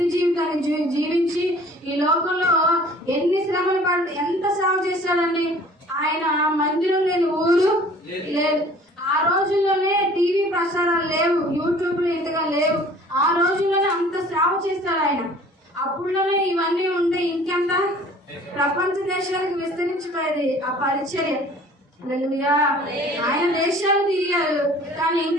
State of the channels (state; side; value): normal; both; correlation 0.50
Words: జీవితాన్ని జీవించి ఈ లోకంలో ఎన్ని శ్రమలు పడి ఎంత సేవ చేశాడండి. ఆయన మందిరం లేని ఊరు లేదు. ఆ రోజుల్లోనే టీవీ ప్రసారాలు లేవు, యూట్యూబ్లు ఇంతగా లేవు. ఆ రోజుల్లోనే అంత సేవ చేస్తాడు ఆయన. అప్పుడులోనే ఇవన్నీ ఉంటే ఇంకెంత ప్రపంచ దేశాలకు విస్తరించిపోయేది ఆ పరిచర్య. హల్లెలూయా. ఆయన దేశాలు తిరిగారు, కానీ